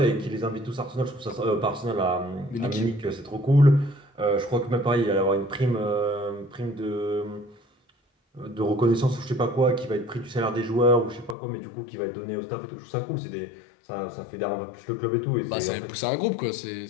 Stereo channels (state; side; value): drops out; right; at 11.4 s